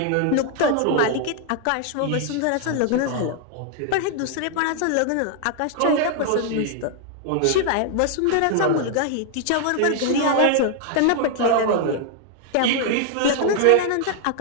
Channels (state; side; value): different; both; correlation 0.00